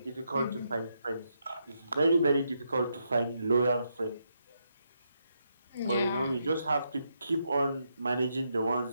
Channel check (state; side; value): inverted; both; correlation -0.80